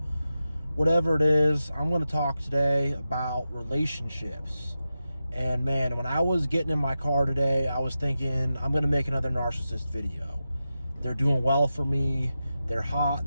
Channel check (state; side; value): inverted; both; correlation -0.91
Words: whatever it is. I'm going to talk today about relationships. And man, when I was getting in my car today, I was thinking, I'm going to make another narcissist video. They're doing well for me. They're hot,